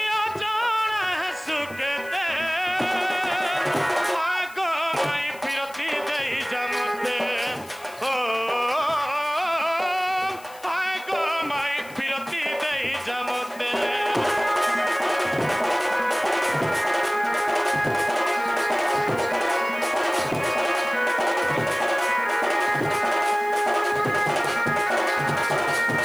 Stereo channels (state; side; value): noise; left; hiss, 21 dB below the sound